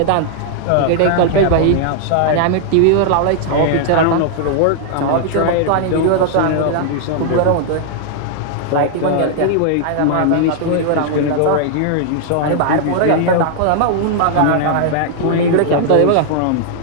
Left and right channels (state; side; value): different; both; correlation -0.01